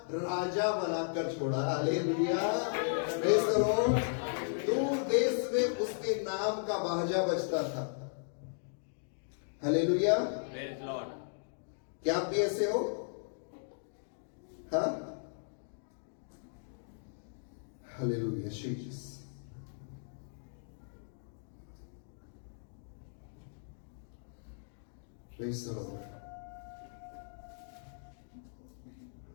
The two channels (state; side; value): silent; right; digital silence